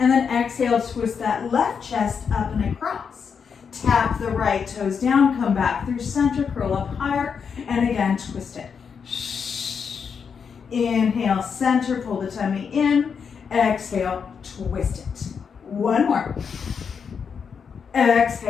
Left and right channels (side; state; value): right; quieter; 6.4 dB